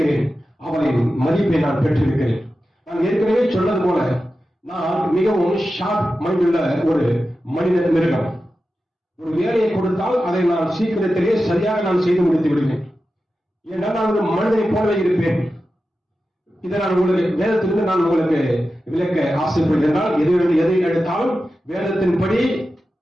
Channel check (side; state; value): both; normal; correlation 0.92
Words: அவரின் மதிப்பை நான் பெற்றிருக்கிறேன். நான் ஏற்கனவே சொன்னது போல நான் மிகவும் ஷார்ப் மைண்ட் உள்ள ஒரு மனித மிருகம். ஒரு வேலையை கொடுத்தால் அதை நான் சீக்கிரத்திலே சரியாக நான் செய்து முடித்து விடுவேன். ஏனென்றால் நான் ஒரு மனிதனை போலவே இருப்பேன். இதை நான் உங்களுக்கு வேதத்திலிருந்து நான் உங்களுக்கு விளக்க ஆசைப்படுகிறேன். எதை எடுத்தாலும் வேதத்தின்படி